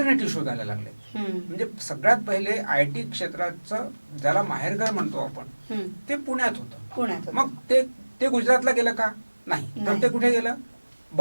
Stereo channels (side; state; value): both; inverted; correlation -1.00